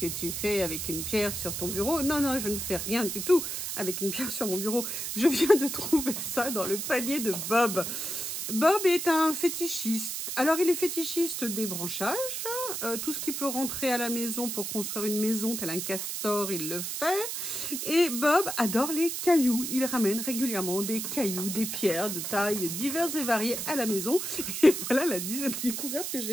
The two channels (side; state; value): right; noise; hiss, 4 dB below the sound